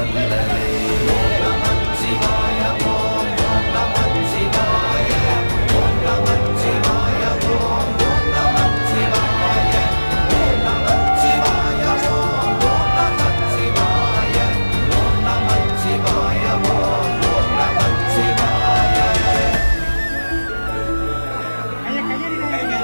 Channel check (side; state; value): both; inverted; correlation -1.00